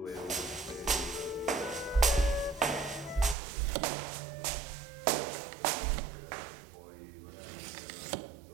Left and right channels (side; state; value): left; drops out; at 3.4 s